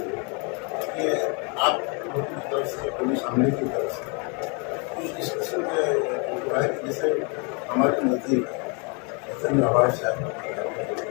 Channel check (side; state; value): right; quieter; 34.4 dB